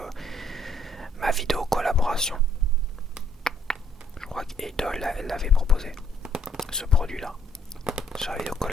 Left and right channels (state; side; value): normal; both; correlation 0.65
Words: ma vidéo collaboration. Je crois qu'Idol elle l'avait proposé, ce produit-là, sur la vidéo